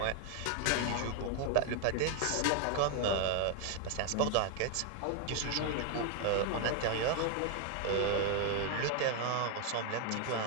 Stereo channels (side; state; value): both; different; correlation 0.01